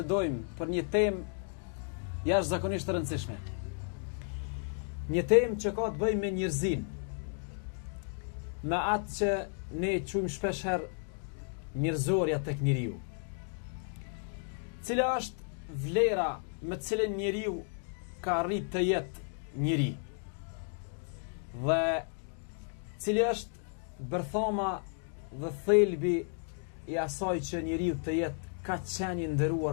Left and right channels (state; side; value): silent; right; 56 dB below the other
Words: për një temë jashtëzakonisht të rëndësishme. Një temë që ka të bëjë me njerëzin, me atë që ne quajmë shpeshherë njerëzorja tek njeriu. Cila është vlera me të cilën njeriu ka arrit të jetë njeri? Dhe cili është bërthama dhe thelbi i asaj që njeriu të jetë ka qenë i